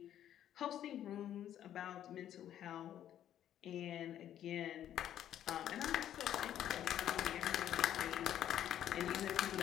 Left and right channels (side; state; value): right; quieter; 11.0 dB